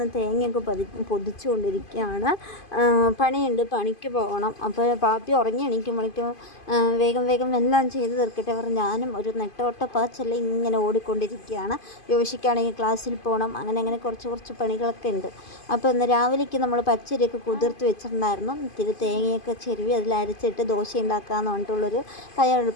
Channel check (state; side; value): late; right; 2.5 ms